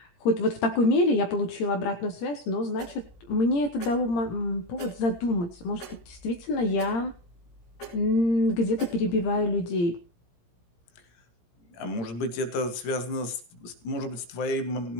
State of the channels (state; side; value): late; right; 17 ms